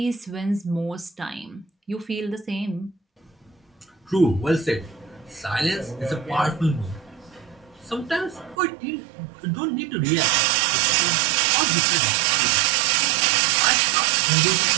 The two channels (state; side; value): drops out; left; at 8.6 s